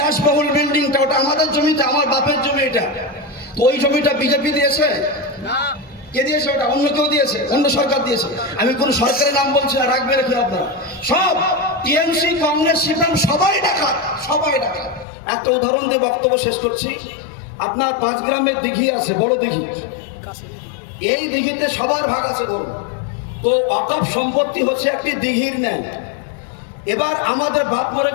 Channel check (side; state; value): right; drops out; at 15.1 s